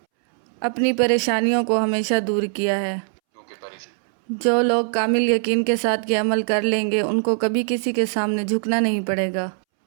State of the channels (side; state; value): left; silent; 65 dB below the other